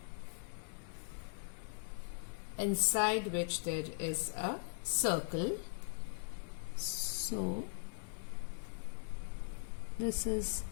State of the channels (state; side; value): silent; right; digital silence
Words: inside which there is a circle. So this is